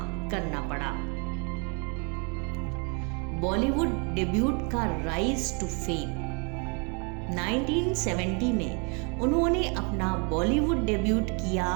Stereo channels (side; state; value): left; quieter; 34.3 dB